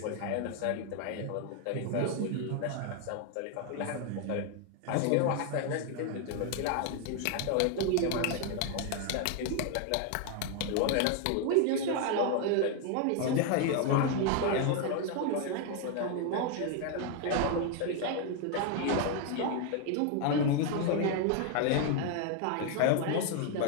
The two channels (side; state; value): both; different; correlation 0.00